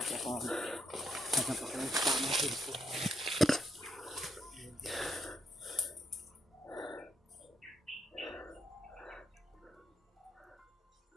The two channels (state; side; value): normal; both; correlation 0.76